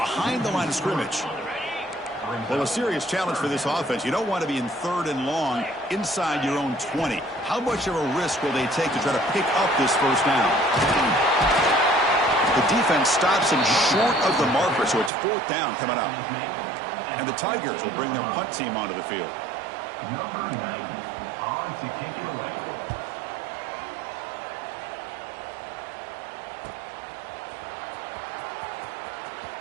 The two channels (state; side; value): drops out; left; at 15.1 s